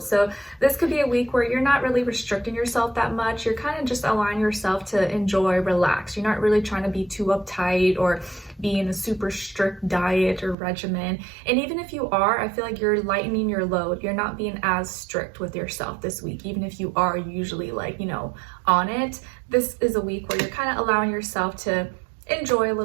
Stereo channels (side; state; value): left; drops out; at 10.6 s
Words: So this could be a week where you're not really restricting yourself that much. You're kind of just allowing yourself to enjoy, relax. You're not really trying to be too uptight or be in a super strict diet or regimen. And even if you are, I feel like you're lightening your load. You're not being as strict with yourself this week, even if you are usually like, you know, on it. This is a week where you're kind of allowing yourself to enjoy a